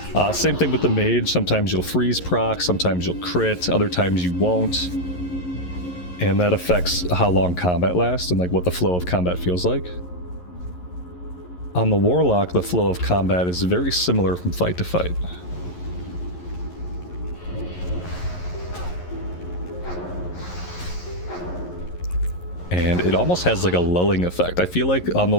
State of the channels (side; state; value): right; late; 11 ms